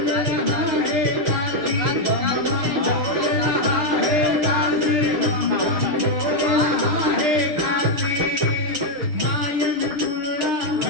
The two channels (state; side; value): late; left; 6.6 ms